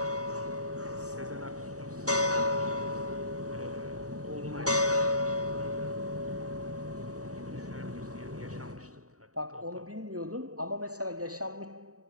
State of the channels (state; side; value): late; left; 0.66 ms